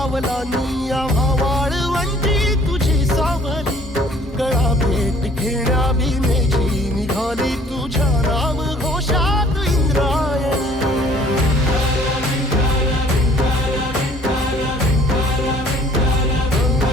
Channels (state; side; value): normal; both; correlation 0.56